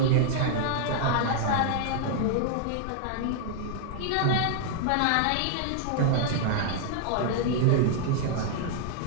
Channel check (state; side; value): different; both; correlation -0.01